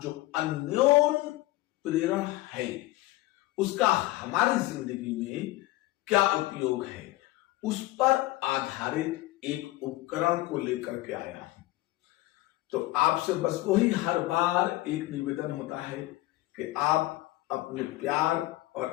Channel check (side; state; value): right; quieter; 18.3 dB